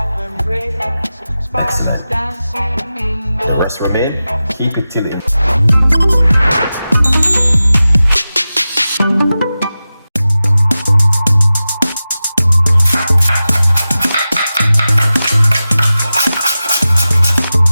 Excellent. The rest remain. Keep it till it.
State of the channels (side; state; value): both; inverted; correlation -0.94